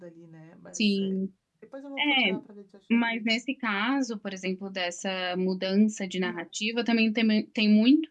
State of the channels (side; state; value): both; identical; correlation 1.00